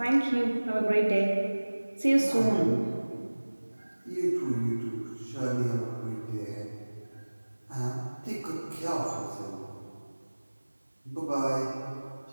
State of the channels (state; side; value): inverted; both; correlation -1.00